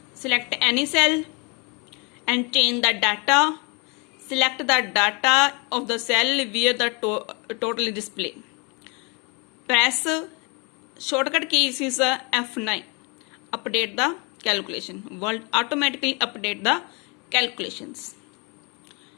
Select any cell and change the data. Select the data of the cell where the total is displayed. Press shortcut key is F9. Update the calculation. World automatically update the calculations.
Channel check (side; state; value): right; quieter; 31.4 dB